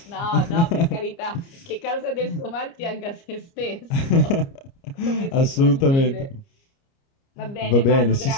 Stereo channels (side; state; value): right; late; 29 ms